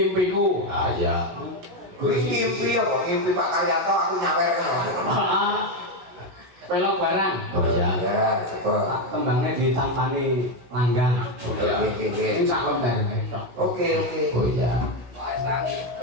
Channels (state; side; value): late; left; 17 ms